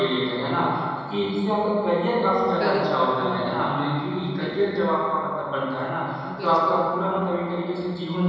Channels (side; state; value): both; identical; correlation 1.00